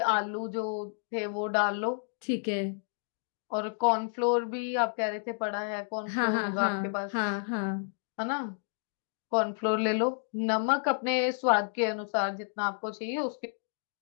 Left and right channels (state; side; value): silent; right; digital silence